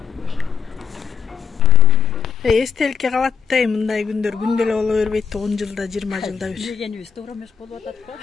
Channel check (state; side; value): quieter; right; 6.7 dB